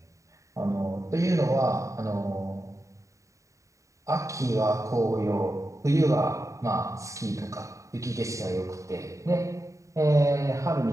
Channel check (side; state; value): left; late; 0.15 ms